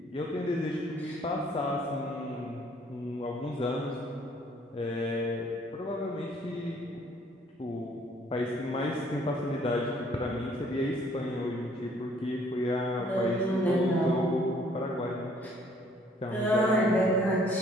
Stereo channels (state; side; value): normal; both; correlation 0.61